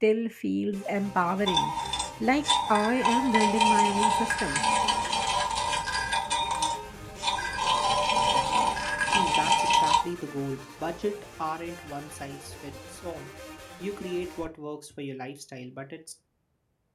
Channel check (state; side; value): identical; both; correlation 1.00